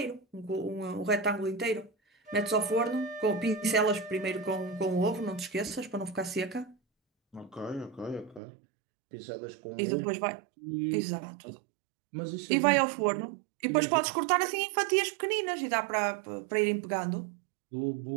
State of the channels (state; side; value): drops out; left; at 8.4 s